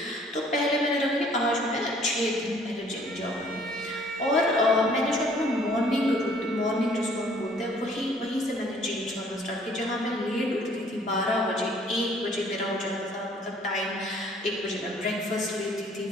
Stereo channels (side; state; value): both; normal; correlation 0.58